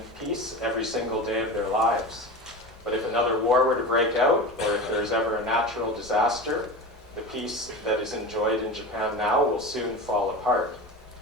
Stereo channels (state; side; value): normal; both; correlation 0.28